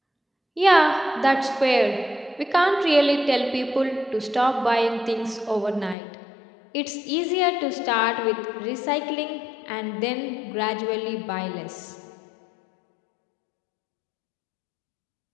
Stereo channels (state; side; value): drops out; right; at 6.0 s